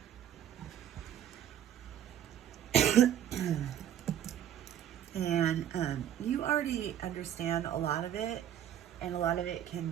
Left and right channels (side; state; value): left; quieter; 10.4 dB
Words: And you already understand a lot of it, and a lot of it can